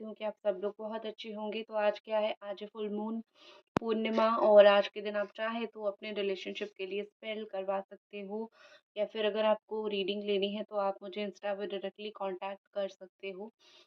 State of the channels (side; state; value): both; identical; correlation 1.00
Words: हूँ कि आप सब लोग बहुत अच्छे होंगे। तो आज क्या है, आज है फुल मून पूर्णिमा, और आज के दिन आप चाहे तो अपने रिलेशनशिप के लिए स्पेल करवा सकते हो, या फिर अगर आपको रीडिंग लेनी है तो आप मुझे इंस्टा पे डायरेक्टली कांटेक्ट कर सकते हो।